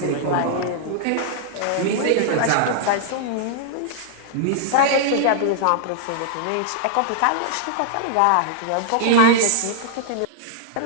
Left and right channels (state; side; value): different; both; correlation -0.01